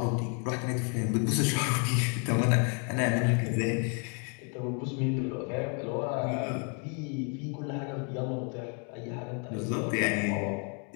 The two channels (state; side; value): quieter; right; 39.3 dB